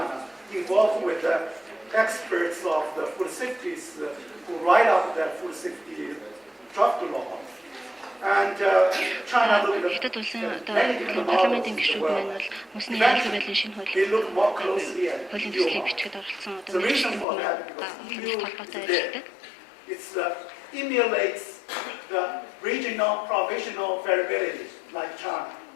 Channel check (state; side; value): drops out; right; at 17.2 s